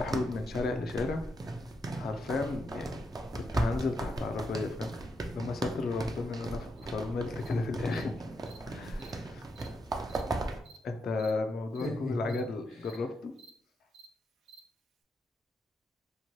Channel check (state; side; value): normal; both; correlation 0.82